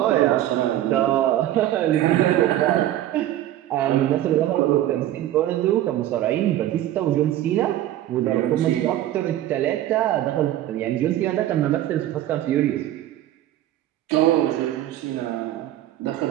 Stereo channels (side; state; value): left; quieter; 13.2 dB